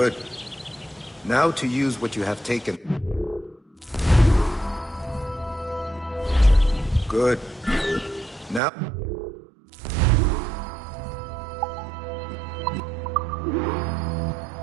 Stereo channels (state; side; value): drops out; left; at 8.6 s